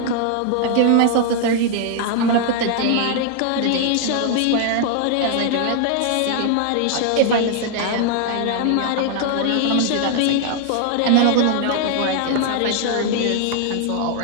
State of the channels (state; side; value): different; both; correlation 0.00